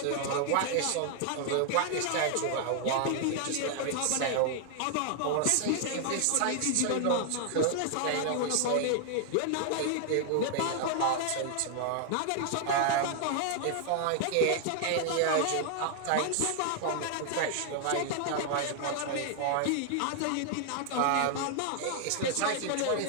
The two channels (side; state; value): both; different; correlation 0.00